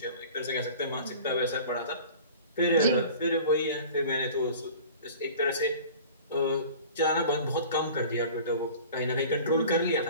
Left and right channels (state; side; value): inverted; both; correlation -0.43